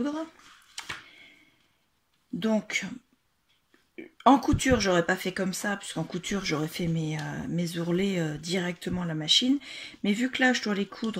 Donc en couture, j'aurais pas fait comme ça, puisqu'en couture, j'aurais fait mes ourlets directement à la machine. Mais vu que là, je dois les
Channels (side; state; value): both; identical; correlation 1.00